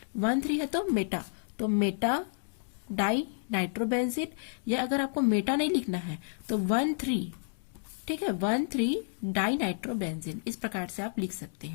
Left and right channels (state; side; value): silent; right; digital silence